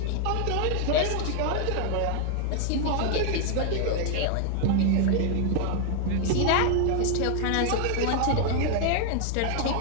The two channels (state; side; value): different; both; correlation 0.00